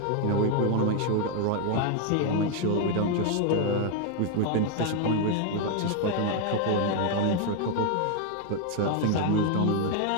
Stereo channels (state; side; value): different; both; correlation 0.00